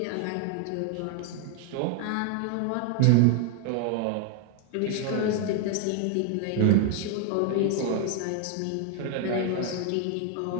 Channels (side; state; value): both; different; correlation 0.00